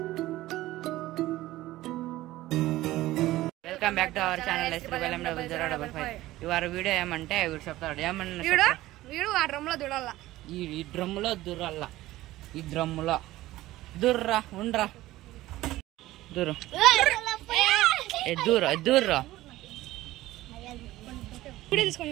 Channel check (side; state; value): left; quieter; 16.5 dB